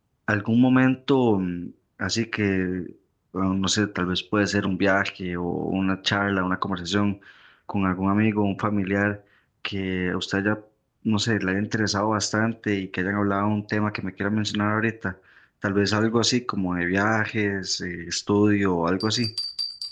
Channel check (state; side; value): identical; both; correlation 1.00